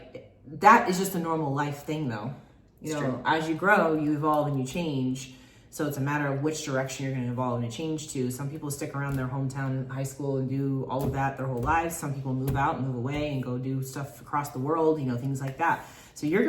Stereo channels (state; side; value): identical; both; correlation 1.00